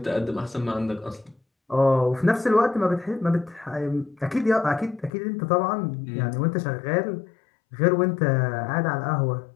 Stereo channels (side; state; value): right; drops out; at 5.1 s